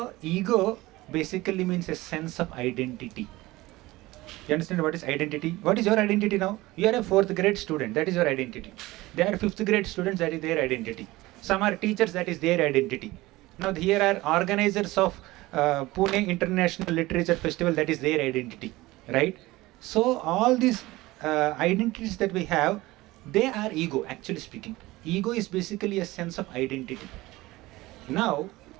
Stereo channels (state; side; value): quieter; left; 19.3 dB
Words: ego basically means a sense of identity. You understand what is identity? What is your identity now? You are a 4th grade student, that is your identity. They are 5th grade students, that is their identity. Some are teachers, that is their identity. Now here are organizers of Pune International Literature Festival, that is their identity, right? So all these identities that we have, they are ego, actually speaking. Ego is basically a sense of identity. Now,